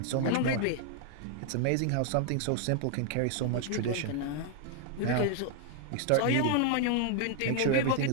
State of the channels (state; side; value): different; both; correlation 0.00